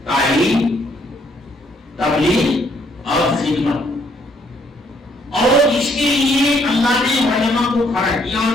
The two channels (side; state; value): both; normal; correlation 0.68